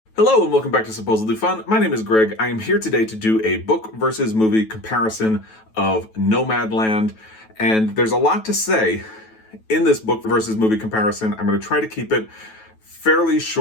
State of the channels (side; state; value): right; late; 9.2 ms